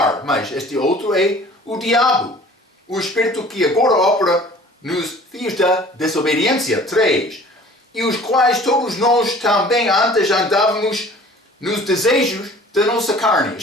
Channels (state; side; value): normal; both; correlation 0.48